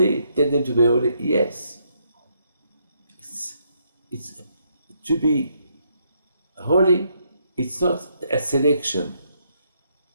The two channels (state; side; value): inverted; both; correlation -0.74